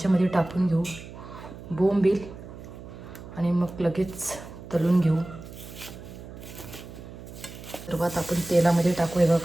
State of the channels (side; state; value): right; noise; hum, 14 dB below the sound